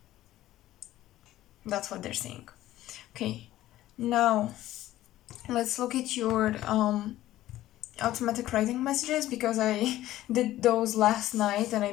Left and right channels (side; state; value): right; quieter; 14.6 dB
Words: That's what they're saying. Okay, now let's look at your automatic writing messages, because I did those last night and I